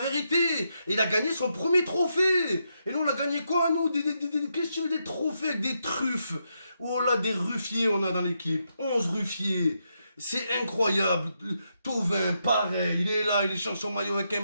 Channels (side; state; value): both; inverted; correlation -0.82